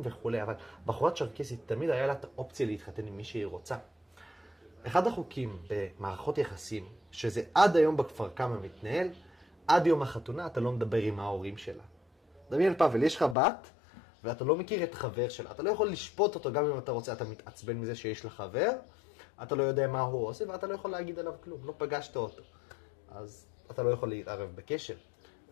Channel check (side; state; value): right; drops out; at 13.4 s